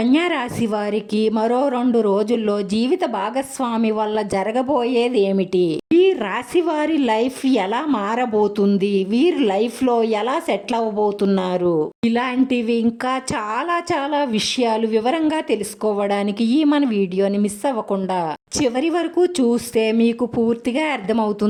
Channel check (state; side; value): identical; both; correlation 1.00